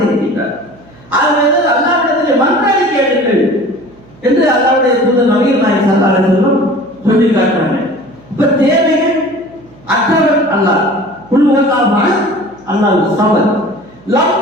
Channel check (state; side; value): noise; right; hum, 26 dB below the sound